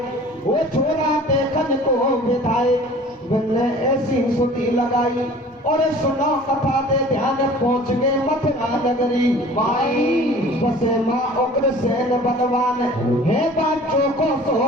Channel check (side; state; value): both; normal; correlation 0.46